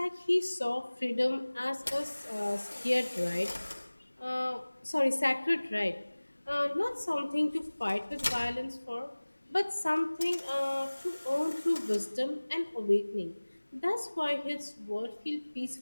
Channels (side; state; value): both; inverted; correlation -1.00